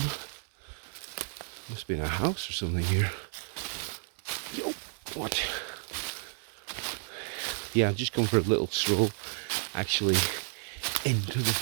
must be in a house or something here. Yo, what? Yeah, I've just come for a little stroll, actually, into the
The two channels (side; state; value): left; silent; 57 dB below the other